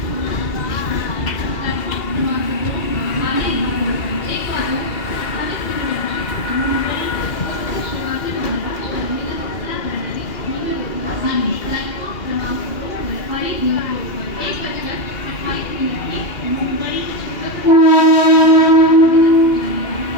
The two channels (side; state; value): right; late; 2.4 ms